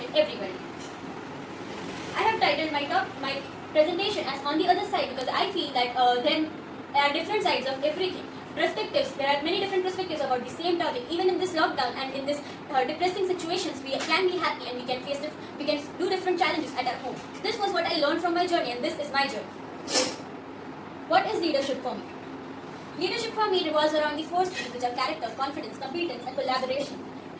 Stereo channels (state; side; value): identical; both; correlation 1.00